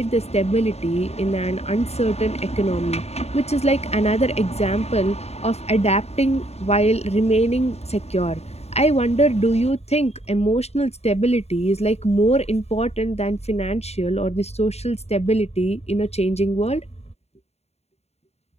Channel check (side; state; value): right; late; 0.31 ms